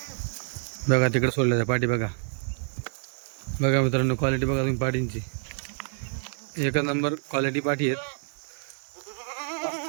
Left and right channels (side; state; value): left; silent; digital silence